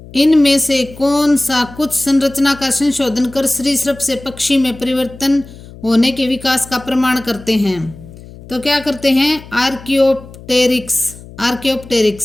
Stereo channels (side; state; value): left; noise; hum, 18 dB below the sound